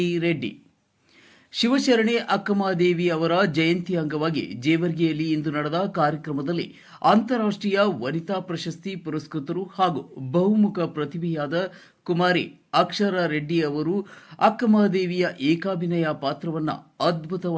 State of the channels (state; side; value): identical; both; correlation 1.00